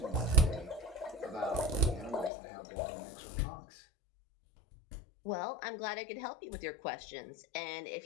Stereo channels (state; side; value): drops out; right; at 2.3 s